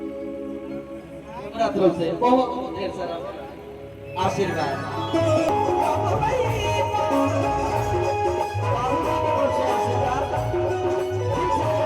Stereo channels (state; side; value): identical; both; correlation 1.00